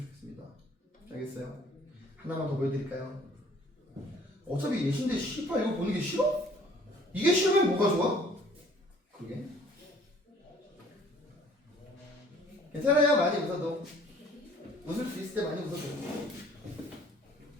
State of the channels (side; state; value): both; normal; correlation 0.56